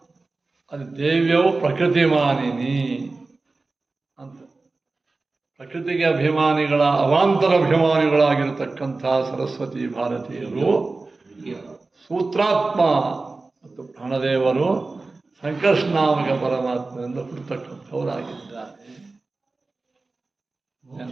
ಅದು ದೇವ್ಯವು ಪ್ರಕೃತಿ ಮಾನಿನಿ ಅಂತ. ಪ್ರಕೃತಿಗೆ ಅಭಿಮಾನಿಗಳ ಅವಾಂತರ ಅಭಿಮಾನಿಗಳಾಗಿರತಕ್ಕಂಥ ಸರಸ್ವತಿ ಭಾರತೀಯರು ಸೂತ್ರಾತ್ಮ ಮತ್ತು ಪ್ರಾಣದೇವರು ಸಂಕರ್ಷನಾಮಕ ಪರಮಾತ್ಮದಿಂದ ಹುಟ್ಟತಕ್ಕಂಥವರಾಗಿದ್ದಾರೆ.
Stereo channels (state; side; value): quieter; left; 3.6 dB